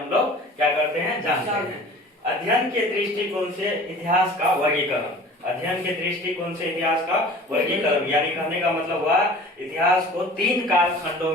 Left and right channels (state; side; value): normal; both; correlation 0.43